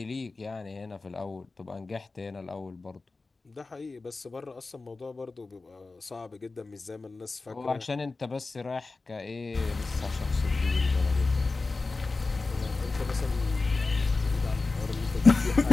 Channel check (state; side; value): quieter; right; 3.7 dB